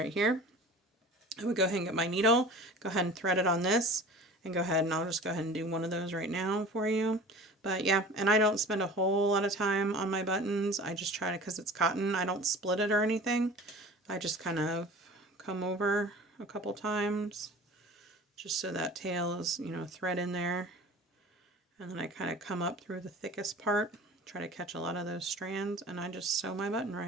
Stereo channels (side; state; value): both; normal; correlation 0.41